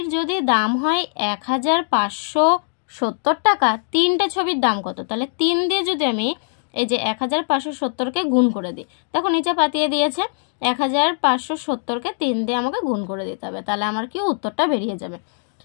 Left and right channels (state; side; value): silent; right; digital silence